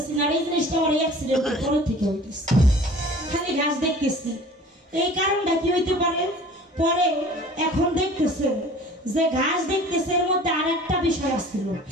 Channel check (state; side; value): normal; both; correlation 0.46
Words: না, এই জিনিসটা আমার অ্যাক্সিডেন্টের পর থেকে হইতেছে, খালি ঘাস দেখতেছি। এই কারণটা কি হইতে পারে? পরে এখন দেখতেছে যে ঘাস দেখতেছে, এর মধ্যে আর একটা বিষয় আসছিল।